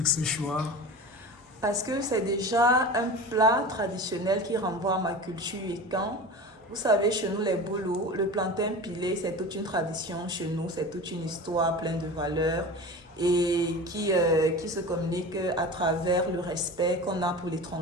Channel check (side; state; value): both; normal; correlation 0.33